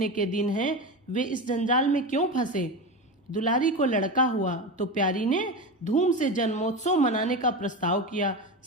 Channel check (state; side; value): normal; both; correlation 0.22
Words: के दिन हैं, वे इस जंजाल में क्यों फंसे। दुलारी को लड़का हुआ तो प्यारी ने धूम से जन्मोत्सव मनाने का प्रस्ताव किया।